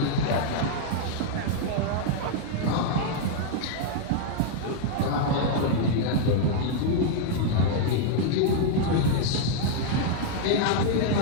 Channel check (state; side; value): different; both; correlation 0.00